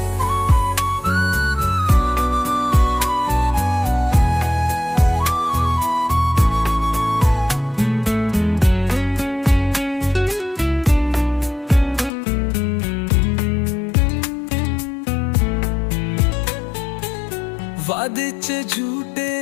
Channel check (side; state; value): right; drops out; at 12.1 s